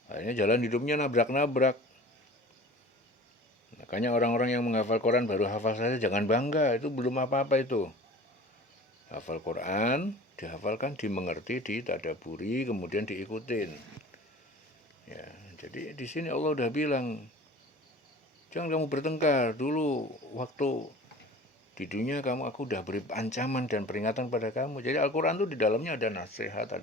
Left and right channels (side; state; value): both; normal; correlation 0.42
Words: Akhirnya jalan hidupnya nabrak-nabrak. Makanya orang-orang yang menghafal Quran baru hafal saja jangan bangga, itu belum apa-apa itu. Hafal Quran, dihafalkan, dimengerti, ditadaburi, kemudian diikutin. Ya, jadi di sini Allah udah bilang, jangan kamu bertengkar. Dulu waktu di dunia aku udah beri ancaman dan peringatan pada kamu. Jadi Al-Quran itu di dalamnya ada nasihat,